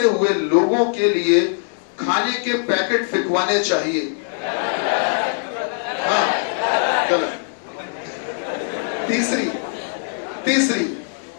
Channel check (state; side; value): silent; right; digital silence